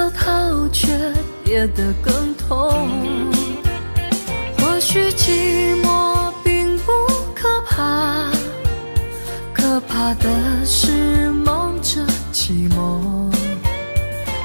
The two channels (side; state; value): both; inverted; correlation -1.00